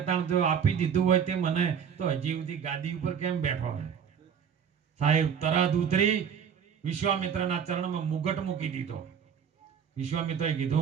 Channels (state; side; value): quieter; left; 7.6 dB